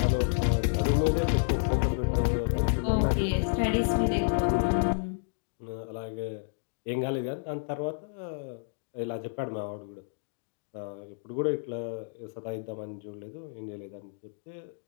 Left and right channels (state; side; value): silent; right; digital silence